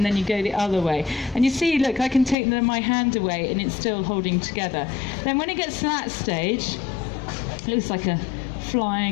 then you go the other way. And you see, look, I can take my hand away, and it's still holding together. Then when it gets to that stage, it looks like a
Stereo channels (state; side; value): drops out; right; at 2.4 s